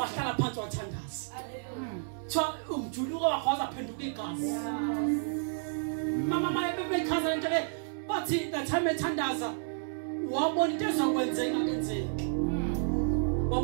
phansi wathandaza. Tshwa umjuluko wakho wazaphenduka igazi. Mama bayekhaza into le bathi the time ethandaza wabona into ezokwenzeka kenzeki.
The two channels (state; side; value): silent; left; 57 dB below the other